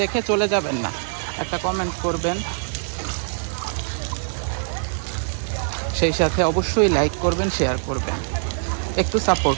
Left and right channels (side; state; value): left; silent; digital silence